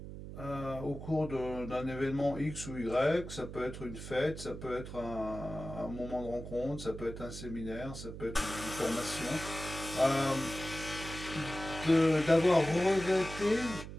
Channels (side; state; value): right; noise; hum, 10 dB below the sound